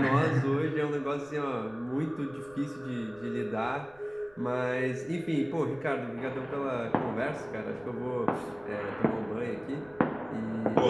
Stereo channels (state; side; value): noise; right; rumble, 28 dB below the sound